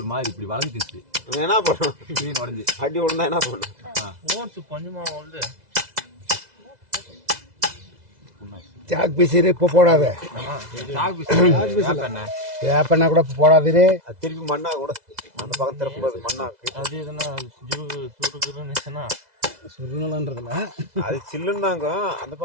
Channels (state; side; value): late; left; 2.0 ms